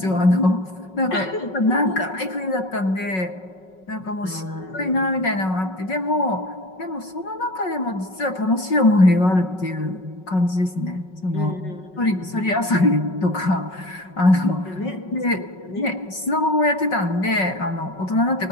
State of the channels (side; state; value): right; late; 5.4 ms